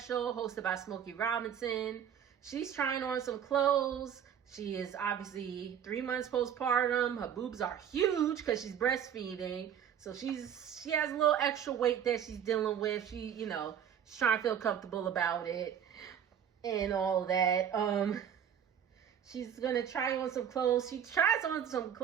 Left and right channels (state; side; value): quieter; left; 8.8 dB